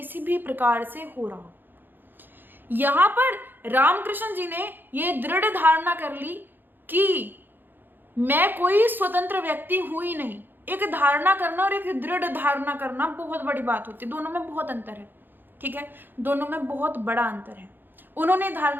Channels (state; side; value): late; left; 0.094 ms